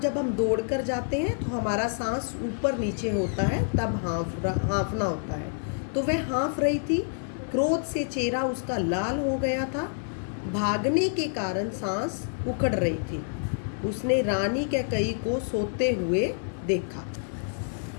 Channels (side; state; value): right; silent; 59 dB below the other